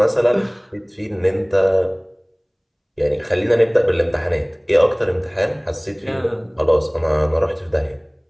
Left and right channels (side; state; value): both; identical; correlation 1.00